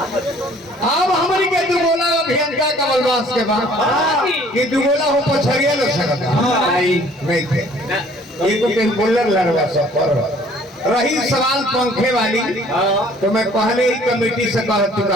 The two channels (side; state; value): both; normal; correlation 0.56